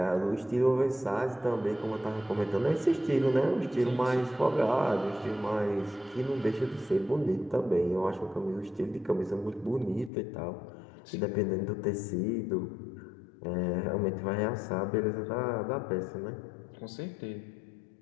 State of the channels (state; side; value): drops out; right; at 10.1 s